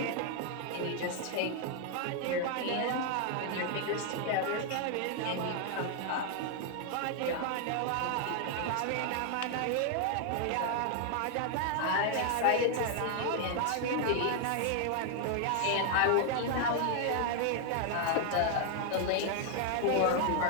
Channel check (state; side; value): different; both; correlation 0.00